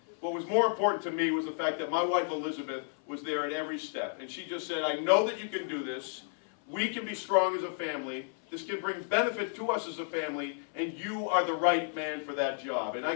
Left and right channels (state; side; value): silent; right; 56 dB below the other